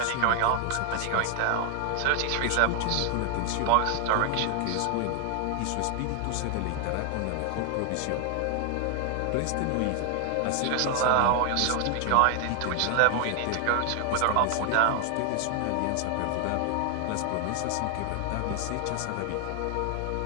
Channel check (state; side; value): different; both; correlation 0.00